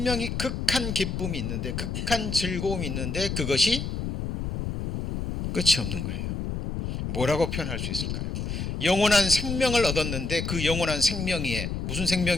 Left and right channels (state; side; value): noise; left; rumble, 3 dB below the sound